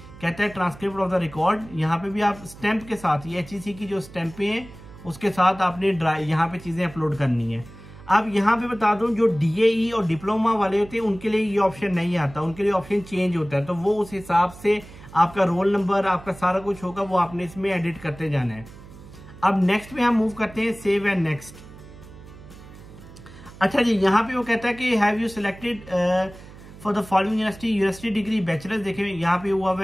कहता है ट्रांसक्रिप्ट ऑफ द रिकॉर्ड, यहाँ पे भी आप स्टैंप के साथ, ये HEC की जो स्टैंपें हैं उसके साथ आपने यहाँ पे चीजें अपलोड करनी है। अब यहाँ पे बता दूं जो DAE और डिप्लोमा वाले होते हैं उनके लिए ये ऑप्शन नहीं आता, उनके लिए ऑप्शन चेंज होता है, तो वो उस हिसाब से आपका रोल नंबर आपका सारा कुछ होगा, वो आपने इसमें एडिट करते जाना है। अब नेक्स्ट में हम मूव करते हैं सेव एंड नेक्स्ट। अच्छा जी यहाँ पे वो कहता है कि have you selected for the following university degree bachelors, देखिए यहाँ पे हुआ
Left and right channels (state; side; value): noise; right; hum, 18 dB below the sound